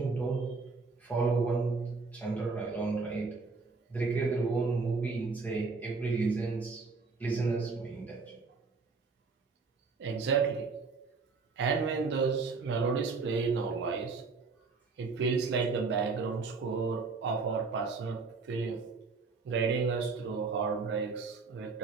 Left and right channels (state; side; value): quieter; left; 4.4 dB